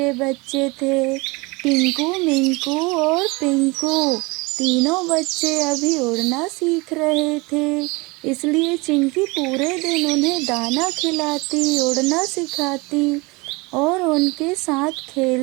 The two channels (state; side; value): quieter; left; 25.7 dB